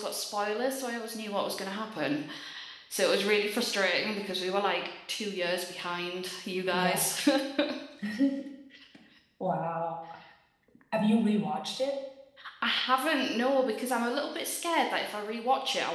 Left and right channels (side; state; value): both; identical; correlation 1.00